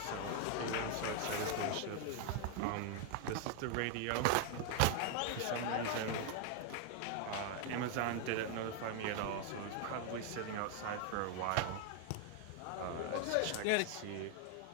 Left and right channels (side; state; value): both; different; correlation 0.01